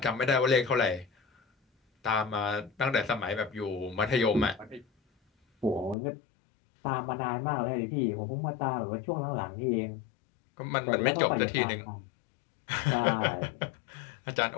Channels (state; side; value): drops out; right; at 6.0 s